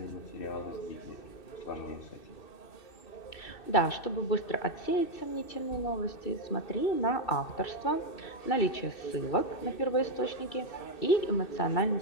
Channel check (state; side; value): late; right; 2.6 ms